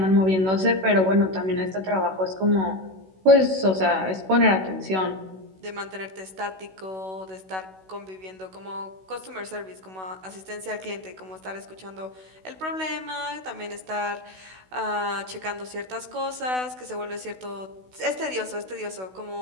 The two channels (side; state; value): left; late; 16 ms